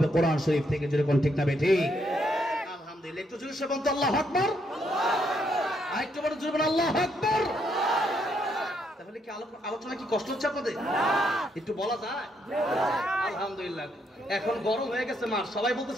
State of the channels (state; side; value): normal; both; correlation 0.75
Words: কোরআন শরীফ থেকে। যেরকম ঠিক না বেঠিক? আলহামদুলিল্লাহ। একটু জোরে বলতে আল্লাহু আকবার, আরেকটু বড় জোরে বলুন আল্লাহু আকবার। তাহলে কি আলোচনা কি কষ্ট হচ্ছে আপনাদের? একটু বলা যায়? আলহামদুলিল্লাহ। এখন গরম হয়ে গেছে, মার সবাই